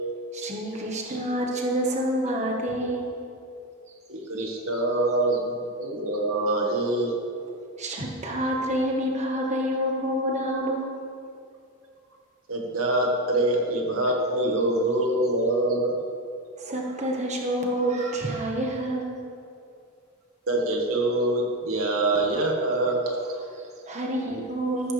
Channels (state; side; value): normal; both; correlation 0.14